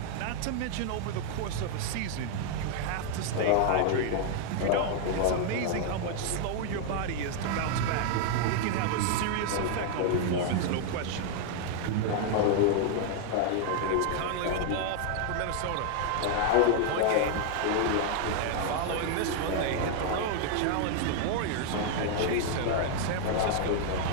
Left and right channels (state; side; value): different; both; correlation 0.00